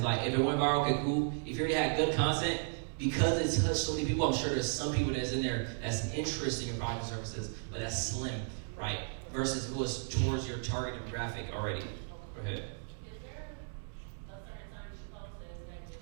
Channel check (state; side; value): silent; left; digital silence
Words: like if it went viral, okay, cool. If you already had good content. Because it's touched so many people, I'm sure there's some people that's in there that's interested in your product and services, but that's slim, right? Versus who is towards your target demographic already. Go ahead. Is there a certain time you should post it? Is that